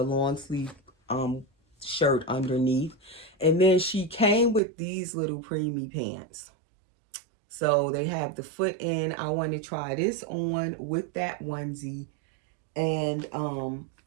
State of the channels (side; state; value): left; drops out; at 4.6 s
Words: long sleeve shirt underneath. And then she came with these little preemie pants. So they have the foot in. I want to try this on with that onesie. And